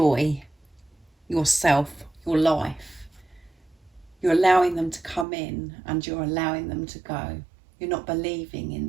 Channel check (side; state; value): left; drops out; at 5.2 s